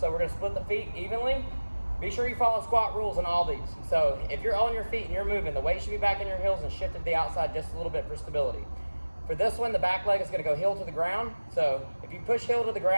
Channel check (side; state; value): both; inverted; correlation -1.00